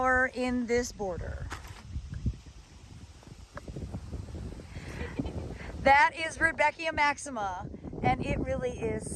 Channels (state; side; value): identical; both; correlation 1.00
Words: in this border? That is Rudbeckia maxima, and it really